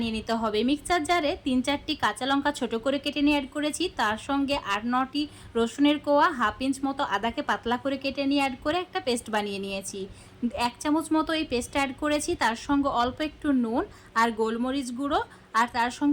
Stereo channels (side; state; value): both; identical; correlation 1.00